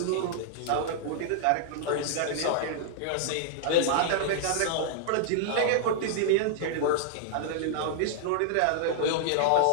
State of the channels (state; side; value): different; both; correlation -0.01